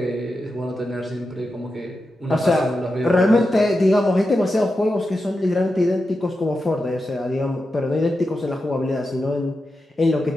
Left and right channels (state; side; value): normal; both; correlation 0.90